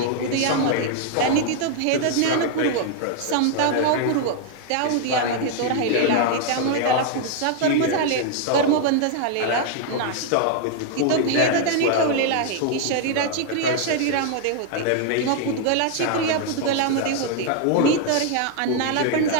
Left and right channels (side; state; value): both; different; correlation 0.00